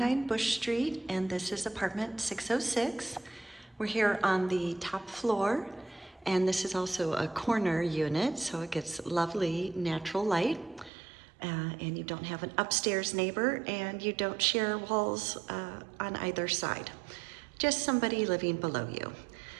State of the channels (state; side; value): drops out; left; at 10.9 s